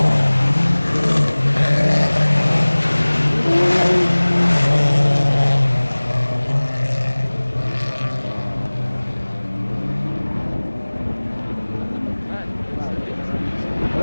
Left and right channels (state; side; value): inverted; both; correlation -1.00